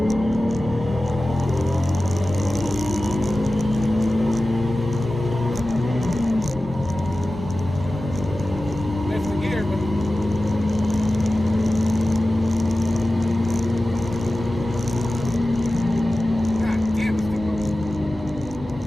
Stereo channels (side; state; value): both; normal; correlation 0.95